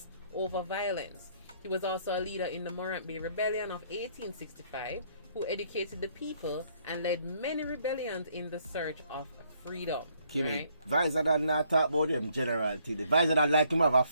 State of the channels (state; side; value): inverted; both; correlation -0.67